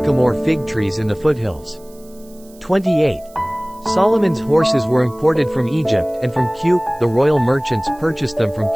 fig trees in the foothills. 28. Solomon's horses were imported from Egypt and from Cu. The royal merchants purchased them from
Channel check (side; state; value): right; noise; hiss, 26 dB below the sound